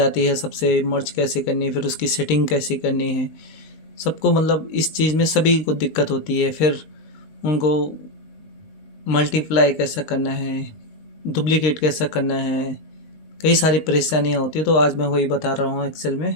है सबसे, मर्ज कैसे करनी है, फिर उसकी सेटिंग कैसे करनी है, सबको मतलब इस चीज़ में सभी को दिक्कत होती है। फिर उनको मल्टीप्लाई कैसा करना है, डुप्लीकेट कैसा करना है, कई सारी परेशानियाँ होती है। तो आज मैं वही बता रहा हूँ एक्सेल में।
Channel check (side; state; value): right; late; 19 ms